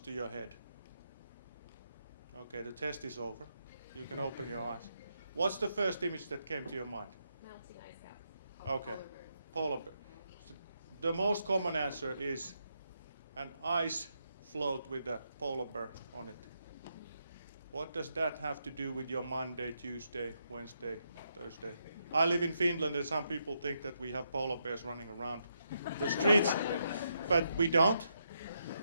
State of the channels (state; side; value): inverted; both; correlation -0.80